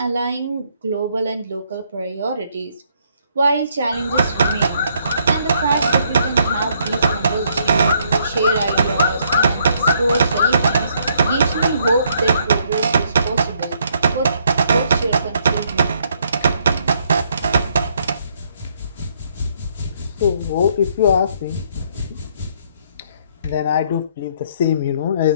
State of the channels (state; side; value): inverted; both; correlation -0.70